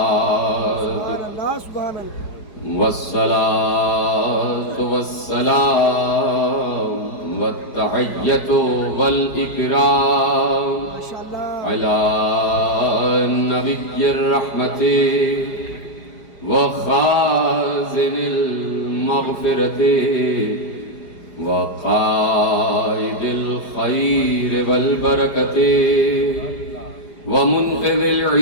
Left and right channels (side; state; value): right; late; 4.9 ms